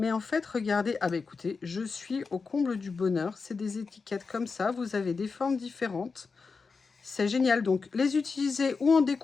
en fait, regardez. Ah bah écoutez, je suis au comble du bonheur. C'est des étiquettes comme ça. Vous avez des formes différentes. C'est génial. Donc, les utiliser ou en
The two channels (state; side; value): quieter; right; 4.7 dB